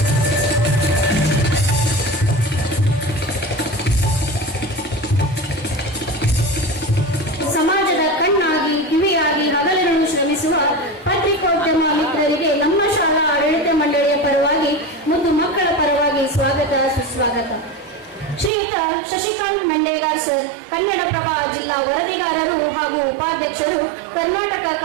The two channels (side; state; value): left; drops out; at 18.5 s